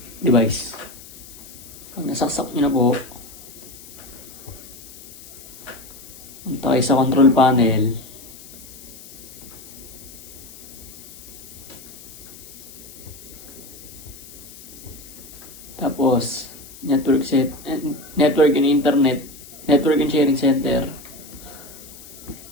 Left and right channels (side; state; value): left; noise; hiss, 18 dB below the sound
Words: device. Pag nasaksak nyo na po, punta kayo sa control panel. Tapos, network and internet, network and sharing center.